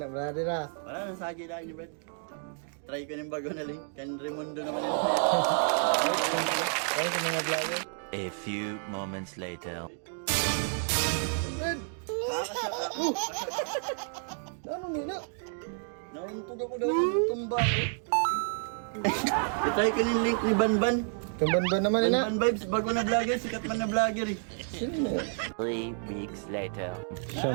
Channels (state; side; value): silent; left; 58 dB below the other